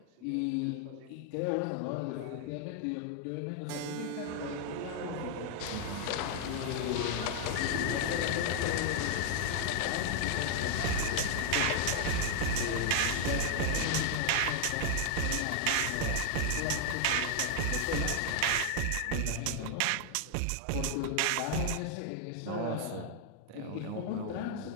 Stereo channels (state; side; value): different; both; correlation 0.00